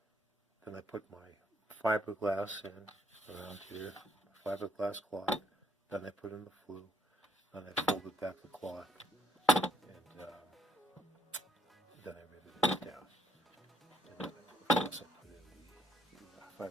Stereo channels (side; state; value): both; normal; correlation 0.71